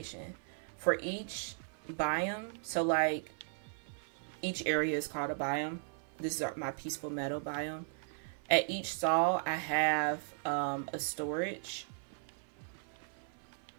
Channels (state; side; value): silent; left; 53 dB below the other